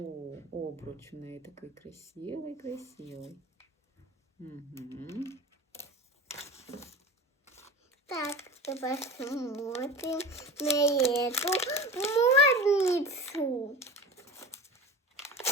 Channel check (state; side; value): normal; both; correlation 0.32